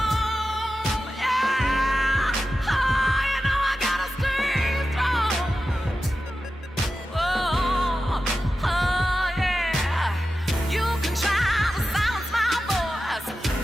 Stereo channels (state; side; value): normal; both; correlation 0.92